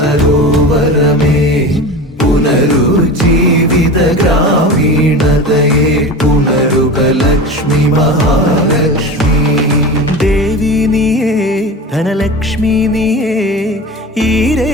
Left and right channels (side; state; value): both; normal; correlation 0.31